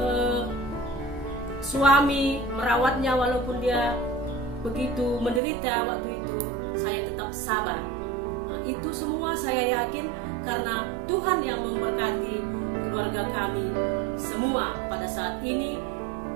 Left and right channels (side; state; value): left; drops out; at 5.4 s